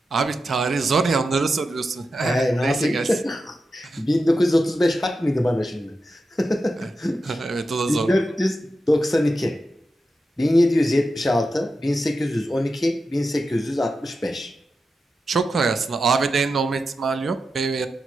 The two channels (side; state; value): both; normal; correlation 0.90